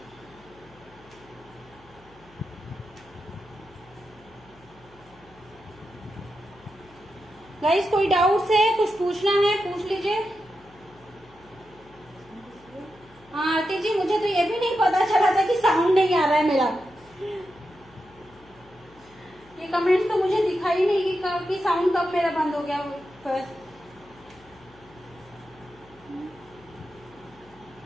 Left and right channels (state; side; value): noise; left; hum, 26 dB below the sound